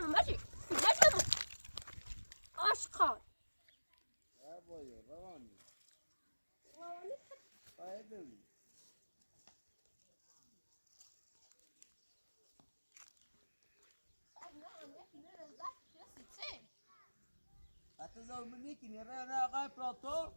مجبور عاشقان بابایو روانی هتظهر منك يا انا غايب بلاطو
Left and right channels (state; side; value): inverted; both; correlation -1.00